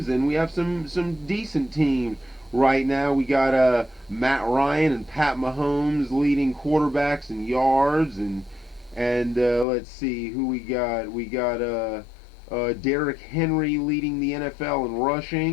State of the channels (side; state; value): right; drops out; at 9.7 s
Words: and we have some decent teams. Right now we got Matt Ryan and Pat Mahomes leading quarterbacks in yards, and let's see who we got. We got Derrick Henry leading the NFL in